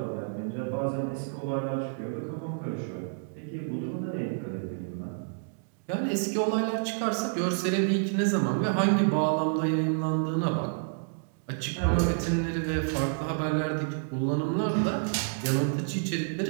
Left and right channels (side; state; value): left; silent; digital silence